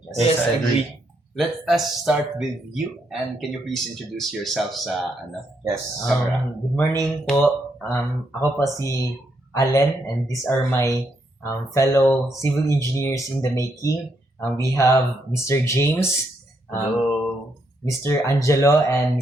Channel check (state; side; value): normal; both; correlation 0.77